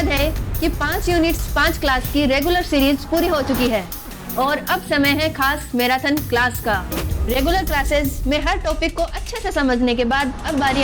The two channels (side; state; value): both; identical; correlation 1.00